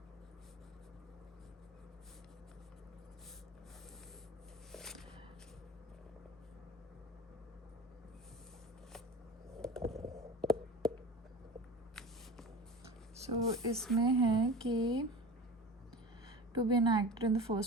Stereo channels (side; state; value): both; normal; correlation 0.35